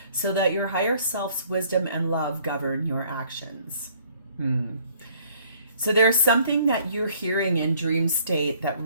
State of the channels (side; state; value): both; inverted; correlation -0.60